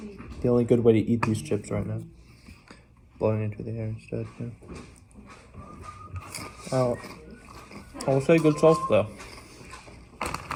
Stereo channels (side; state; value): both; identical; correlation 1.00